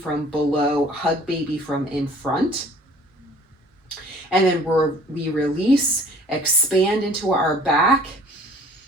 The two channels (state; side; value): normal; both; correlation 0.51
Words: below, hug baby from in front. And then we release, expand into our back